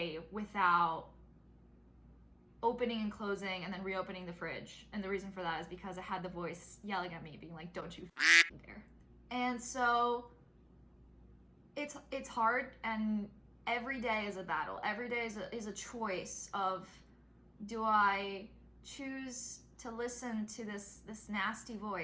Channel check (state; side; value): identical; both; correlation 1.00